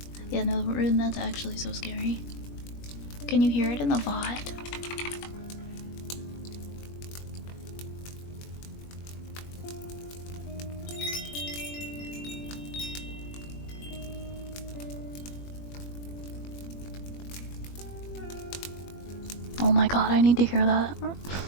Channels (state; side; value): late; right; 21 ms